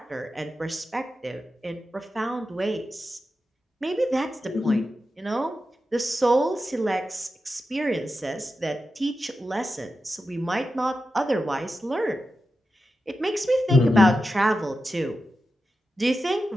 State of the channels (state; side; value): normal; both; correlation 0.91